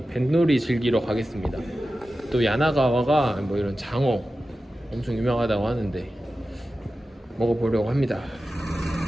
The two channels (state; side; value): normal; both; correlation 0.93